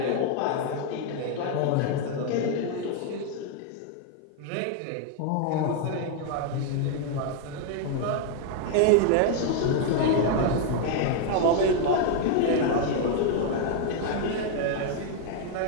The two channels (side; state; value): both; different; correlation 0.00